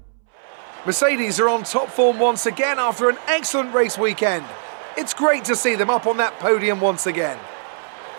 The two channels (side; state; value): left; silent; 65 dB below the other